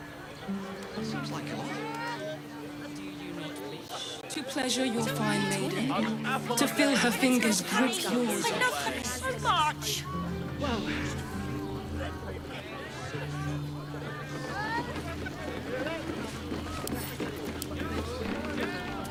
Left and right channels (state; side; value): identical; both; correlation 1.00